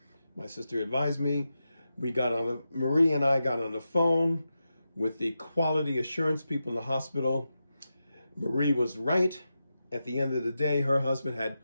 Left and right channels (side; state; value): both; inverted; correlation -0.90